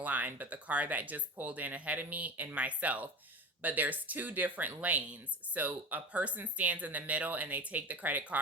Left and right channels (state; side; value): normal; both; correlation 0.31